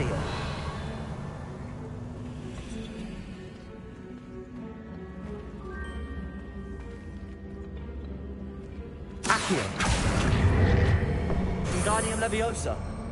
Accio! Wingardium Leviosa!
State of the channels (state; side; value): identical; both; correlation 1.00